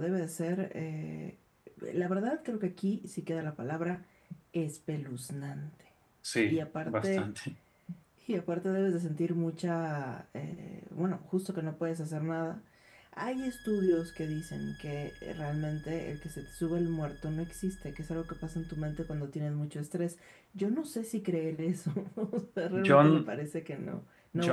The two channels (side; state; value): both; identical; correlation 1.00